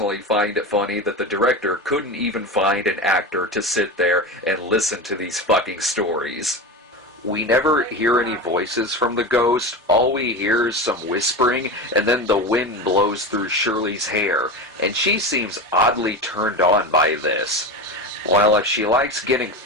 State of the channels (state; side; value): normal; both; correlation 0.24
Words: find it funny that the director couldn't even find an actor to sit there and listen to these fucking stories. We never hear any voices from the ghost. All we hear is some whispering, and then the wind blows through Shirley's hair, and she seems oddly turned on by this. Well, if she likes getting